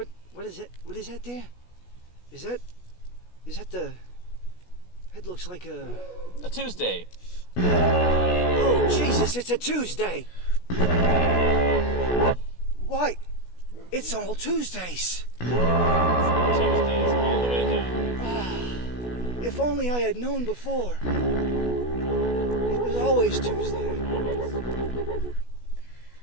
What is it? What is that there? Is that the... It looks like a... A Tuesday! Oh, Jesus, it's a Tuesday! Why? It's all Tuesdays! Tuesdays all the way down. If only I had known before. It was always Tuesday.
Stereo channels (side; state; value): right; late; 16 ms